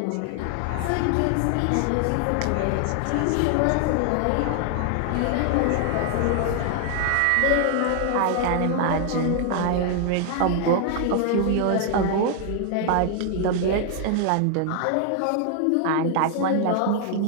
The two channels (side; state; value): both; different; correlation 0.00